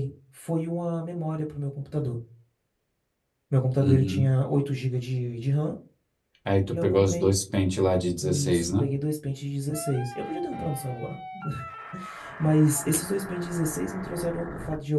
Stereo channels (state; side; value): identical; both; correlation 1.00